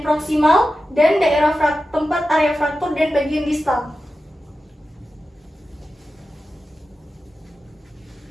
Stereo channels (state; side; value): normal; both; correlation 0.92